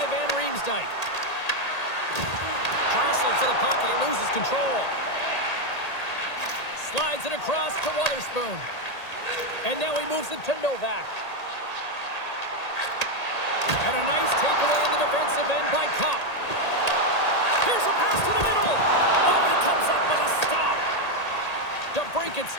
Van Riemsdyk. Jostling for the puck and he loses control. Slides it across to Wotherspoon. And now he moves it to Novak. And a nice takeaway in the defensive end by Kopp. Here's a pass to the middle. Oh, and he comes up with a stop. DeBrincat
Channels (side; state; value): right; late; 1.8 ms